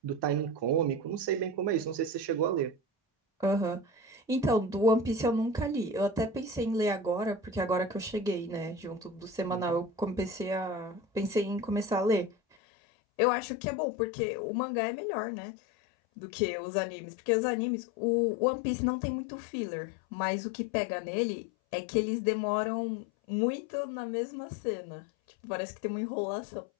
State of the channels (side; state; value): right; drops out; at 12.6 s